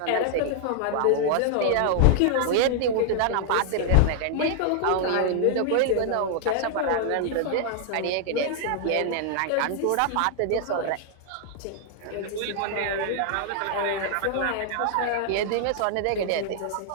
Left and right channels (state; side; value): different; both; correlation 0.00